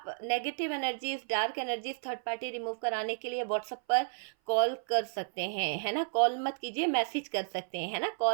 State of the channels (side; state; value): left; silent; 55 dB below the other